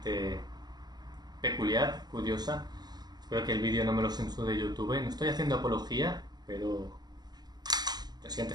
peculiar, curiosa. Espero que el vídeo no me lo censure de YouTube. No estoy haciendo apología, pero te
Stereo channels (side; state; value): left; late; 0.20 ms